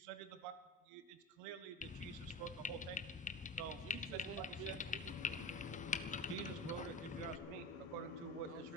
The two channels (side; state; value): both; normal; correlation 0.32